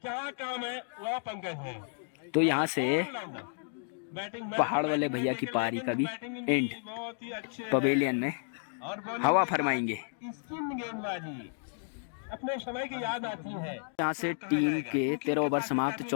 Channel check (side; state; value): right; silent; digital silence